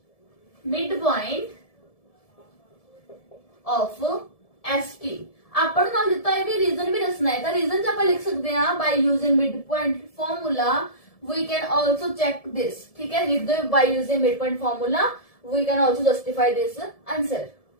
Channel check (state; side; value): late; right; 1.7 ms